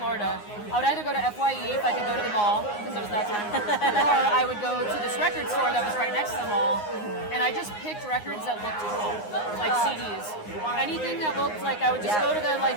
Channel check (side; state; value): right; late; 9.6 ms